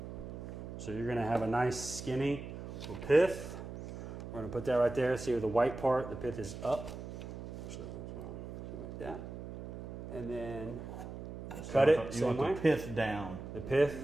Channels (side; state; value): right; noise; hum, 9 dB below the sound